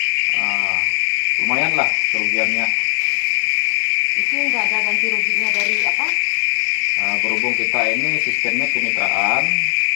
lumayan lah kerugiannya. Itu nggak ada ganti ruginya dari apa? Berhubung kita ini sistemnya kemitraan.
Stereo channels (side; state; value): right; silent; 61 dB below the other